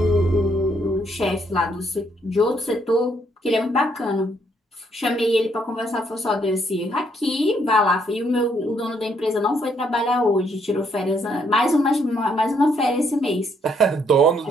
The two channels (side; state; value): both; normal; correlation 0.71